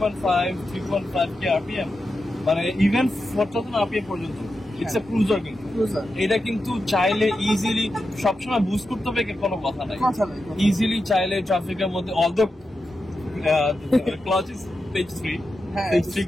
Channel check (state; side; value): normal; both; correlation 0.89